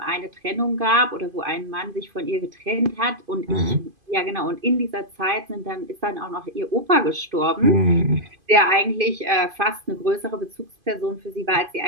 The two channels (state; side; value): late; left; 2.5 ms